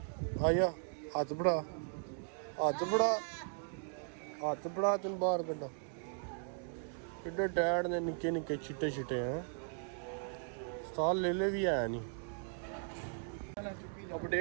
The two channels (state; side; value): silent; left; 53 dB below the other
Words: आया, हाथ बढ़ा तेन बाहर कड्डा। किड्डे टैड ने निक्के निक्के चिट्टे चिट्टे हैं, साल ले भी है नहीं।